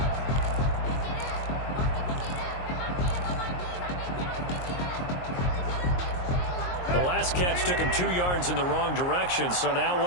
The last catch took him 2 yards in the wrong direction, so now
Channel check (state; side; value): late; right; 22 ms